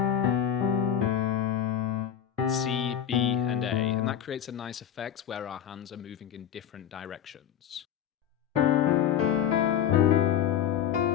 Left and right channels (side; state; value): right; quieter; 9.7 dB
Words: C, B, and A, and that creates a nice effect where our hands are moving in different directions.